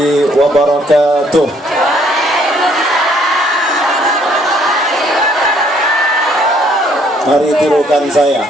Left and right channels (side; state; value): both; normal; correlation 0.64